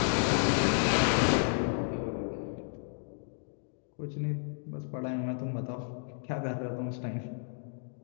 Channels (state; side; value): silent; right; digital silence